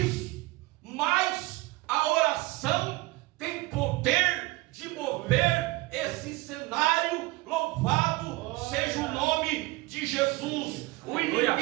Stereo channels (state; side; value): quieter; left; 21.4 dB